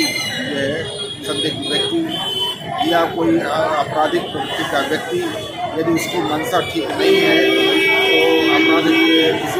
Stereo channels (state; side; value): identical; both; correlation 1.00